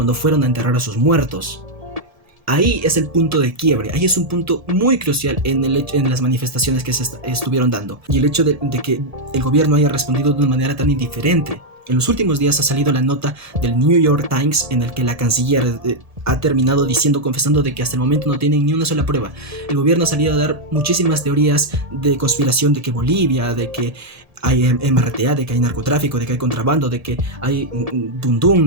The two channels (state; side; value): late; left; 1.7 ms